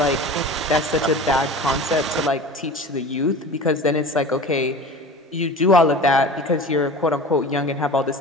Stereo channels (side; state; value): both; normal; correlation 0.36